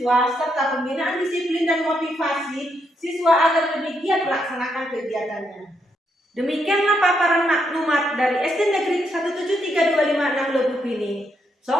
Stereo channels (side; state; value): both; normal; correlation 0.78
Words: serta pembinaan disiplin dan motivasi siswa agar lebih giat melaksanakan kegiatannya. Demikianlah paparan maklumat dari SD Negeri 17325 Lebuk ini.